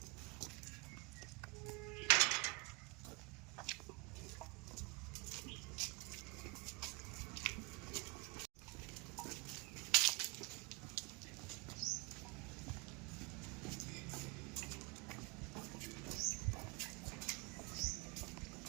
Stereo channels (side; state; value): left; quieter; 25.8 dB